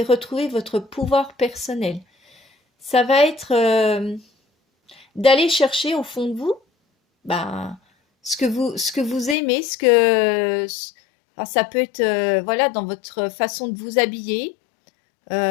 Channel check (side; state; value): right; drops out; at 9.3 s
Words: retrouver votre pouvoir personnel. Ça va être d'aller chercher au fond de vous ben, ce que vous aimez, alors, ça peut être voilà, dans votre façon de vous habiller,